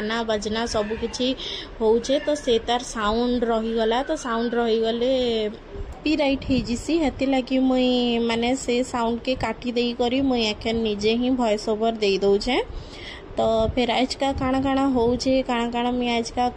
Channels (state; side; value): identical; both; correlation 1.00